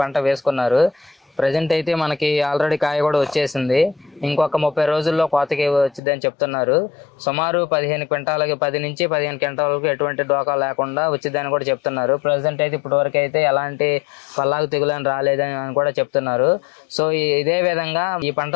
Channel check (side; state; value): right; drops out; at 6.0 s